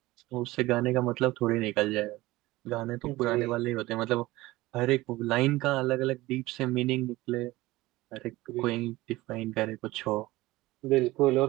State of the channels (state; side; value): quieter; left; 18.8 dB